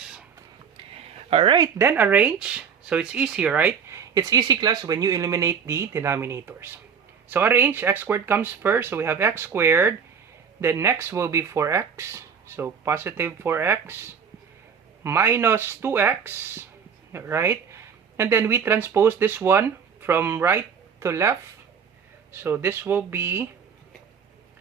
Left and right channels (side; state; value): left; quieter; 6.8 dB